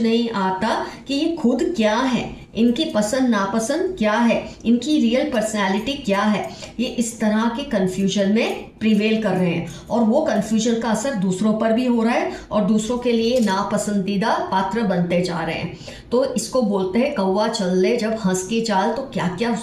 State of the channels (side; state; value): both; identical; correlation 1.00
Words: आता कि ये खुद क्या है, इनकी पसंद नापसंद क्या है, इनकी रियल पर्सनैलिटी क्या है, ये इस तरह के कन्फ्यूजन में प्रिवेल कर रहे हैं और वो कन्फ्यूजन का असर दूसरों पर भी हो रहा है और दूसरों के लिए नापसंदीदा पात्र बनते जा रहे हैं। तो इसको बोलते हैं कौवा चल ले जब हंस की चाल, तो क्या क्या